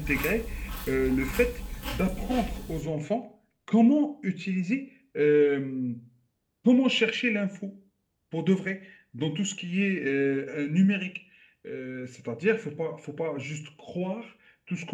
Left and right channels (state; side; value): identical; both; correlation 1.00